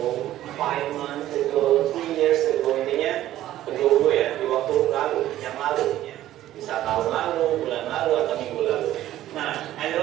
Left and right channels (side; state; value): left; quieter; 13.6 dB